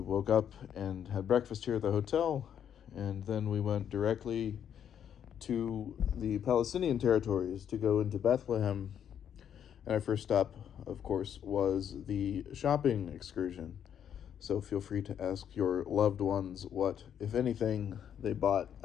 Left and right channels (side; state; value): right; quieter; 9.0 dB